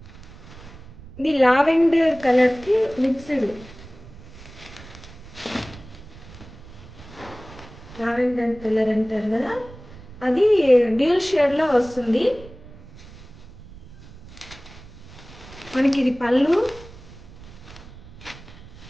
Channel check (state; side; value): noise; right; rumble, 19 dB below the sound